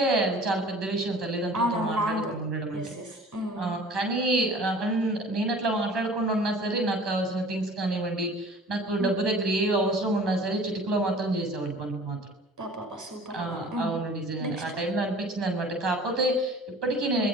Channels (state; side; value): normal; both; correlation 0.46